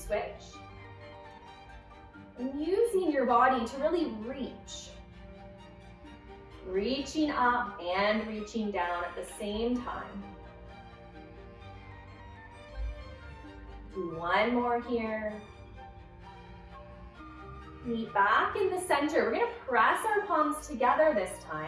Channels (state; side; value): identical; both; correlation 1.00